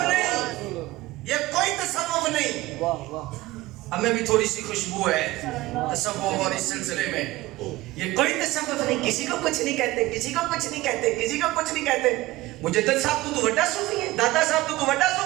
ہمیں بھی تھوڑی سی خوشبو ہے تصوف اور اس سلسلے میں, یہ کوئی تصوف نہیں, کسی کو کچھ نہیں کہتے, کسی کو کچھ نہیں کہتے, کسی کو کچھ نہیں کہتے. مجدد صاحب تو وڈا صوفی ہے, دادا صاحب تو وڈا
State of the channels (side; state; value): left; quieter; 18.5 dB